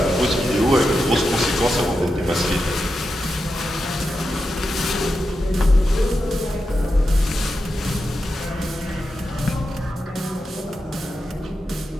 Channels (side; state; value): both; normal; correlation 0.88